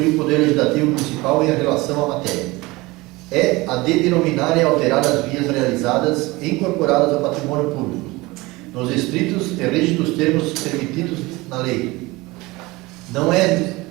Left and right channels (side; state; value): left; quieter; 21.8 dB